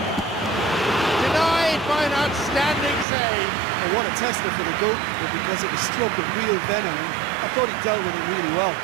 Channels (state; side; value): drops out; left; at 3.1 s